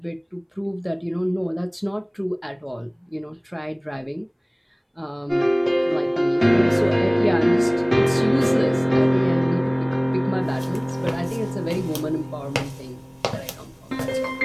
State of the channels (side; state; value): both; identical; correlation 1.00